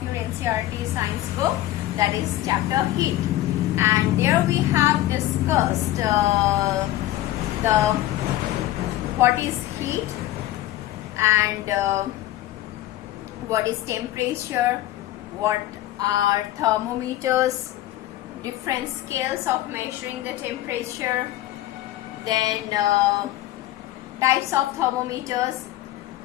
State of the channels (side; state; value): right; quieter; 15.0 dB